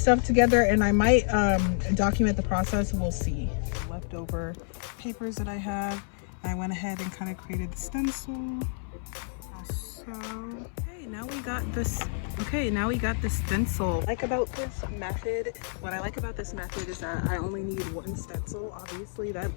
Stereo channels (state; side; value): silent; right; 58 dB below the other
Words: together and I might document the process. We'll see. Leftover papers that I have. I went ahead and kind of created the stencil. So, okay, now we got this. Okay, now we got the stencil. What I like about this method is that I only need one stencil. Obviously, that